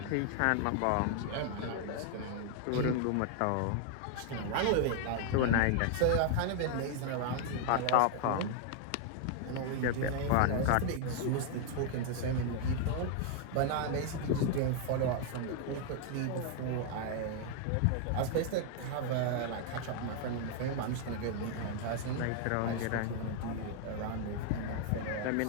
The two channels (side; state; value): both; different; correlation 0.00